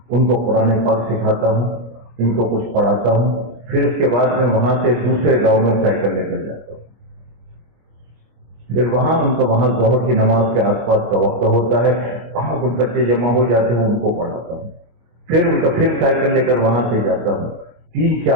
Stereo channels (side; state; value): left; late; 25 ms